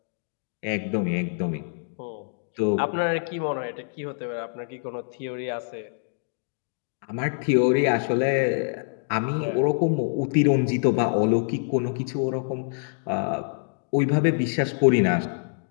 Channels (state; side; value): silent; right; digital silence